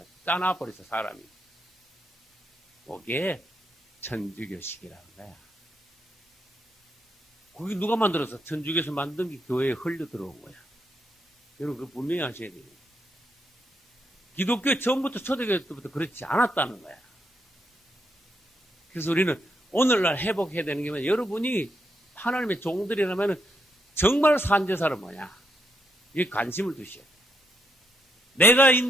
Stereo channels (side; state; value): both; normal; correlation 0.78